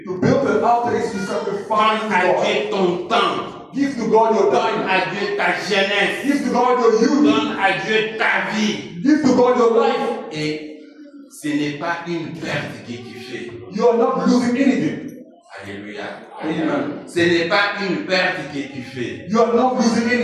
To build an altar is to sacrifice Donne à to God. Dieu ton temps. Give to God your Donne time. à Dieu ta jeunesse. Give to God your youth. Donne à Dieu ta vie. Give to God your life. Et ce n'est pas une perte que tu fais. You are not losing anything. Alléluia. Amen. Ce n'est pas une perte que tu fais. You are not losing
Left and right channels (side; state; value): both; identical; correlation 1.00